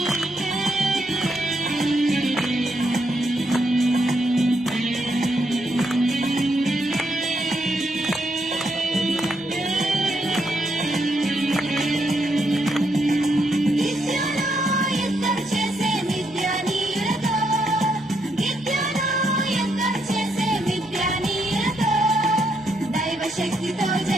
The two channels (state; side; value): normal; both; correlation 0.77